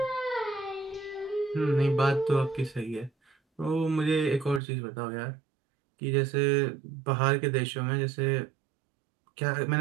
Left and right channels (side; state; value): left; drops out; at 4.6 s